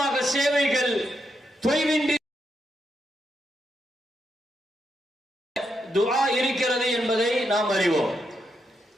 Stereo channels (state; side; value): normal; both; correlation 0.82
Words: சேவைகள் தொய்வின்றி துஆ இருக்கிறது என்பதை நாம் அறிவோம்.